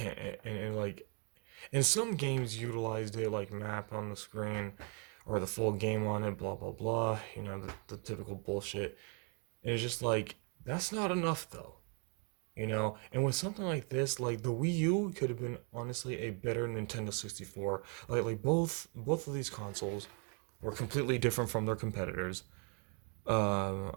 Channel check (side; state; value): left; quieter; 37.9 dB